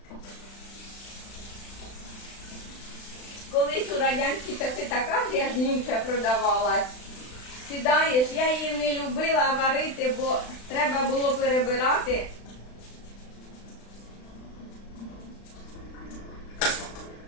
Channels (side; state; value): right; late; 35 ms